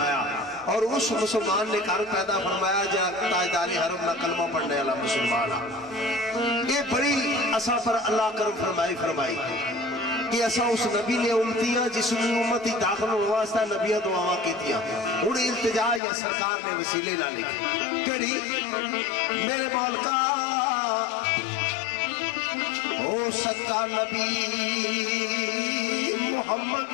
और उस मुसलमान ने घर पैदा फरमाया जो ताजदारी हरम ना कलमा पढ़ने वाला मुसलमान ये बड़ी असा पर अल्लाह करम फरमाई कि असा उस नबी ने उम्मतियां जिसकी उम्मत ही दाखिल होने वास्ते नबिया दुआवां कीतियां हुण इल्तिजा या सरकार ने वसीले ना लिखी केड़ी मेरे मालका ओ सच्चा नबी मुहम्मद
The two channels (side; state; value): right; drops out; at 16.0 s